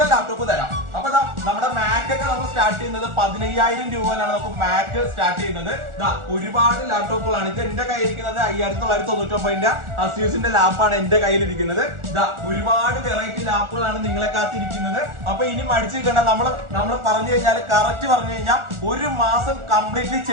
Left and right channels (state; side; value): late; left; 1.4 ms